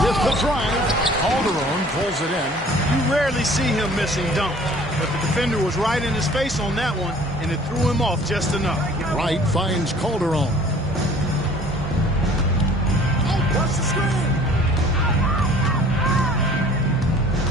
the drive. Calderon pulls it in. You rarely see him missing dunk, but the defender was right in his face on that one, and it threw him off just enough. Wright finds Calderon. Watch the screen.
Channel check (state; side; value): normal; both; correlation 0.51